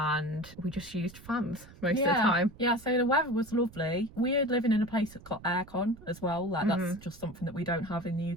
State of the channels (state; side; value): noise; right; rumble, 20 dB below the sound